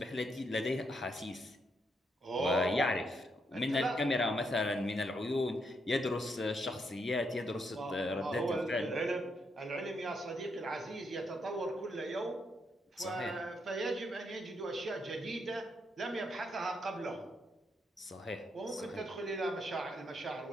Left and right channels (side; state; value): both; normal; correlation 0.78